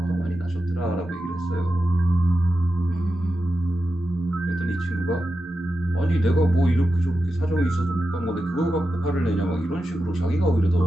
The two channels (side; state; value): both; normal; correlation 0.90